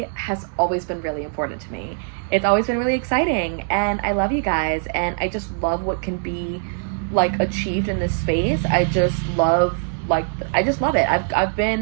has always been really important to me. It's always been really exciting, and I love you guys, and I just love what can be like achieved in this space. I just love it. I've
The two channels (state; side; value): silent; left; digital silence